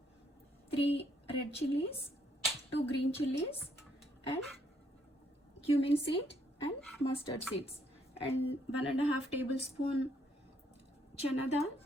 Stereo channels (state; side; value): normal; both; correlation 0.71